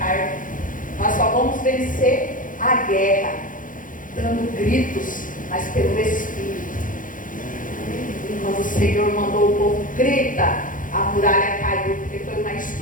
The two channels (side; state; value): right; late; 0.39 ms